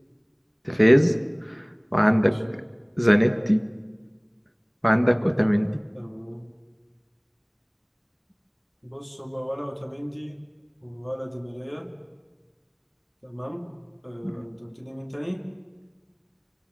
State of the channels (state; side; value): identical; both; correlation 1.00